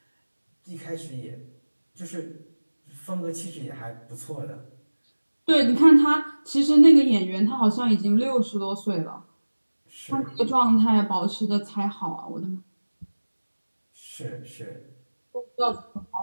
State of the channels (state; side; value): inverted; both; correlation -1.00